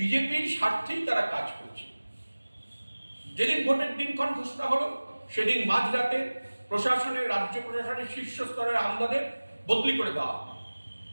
স্বার্থেই তারা কাজ করছে। যেদিন ভোটের দিনক্ষণ ঘোষণা হলো, সেদিন মাঝরাতে রাজ্য প্রশাসনের শীর্ষ স্তরের আমলাদের বদলি করে দেওয়া হলো।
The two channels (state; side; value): inverted; both; correlation -1.00